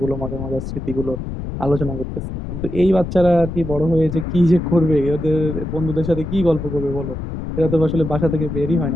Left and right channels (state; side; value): noise; left; rumble, 7 dB below the sound